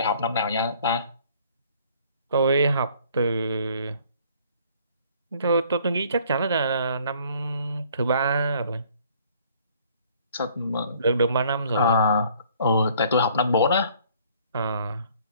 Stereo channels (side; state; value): both; inverted; correlation -0.58